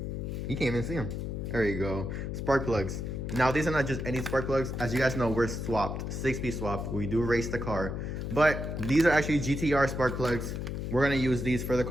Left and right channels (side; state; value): left; noise; hum, 4 dB below the sound